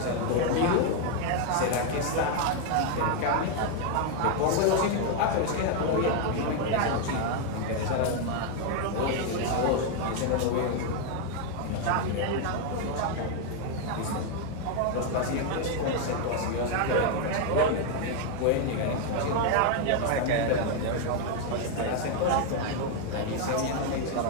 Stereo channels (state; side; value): different; both; correlation 0.01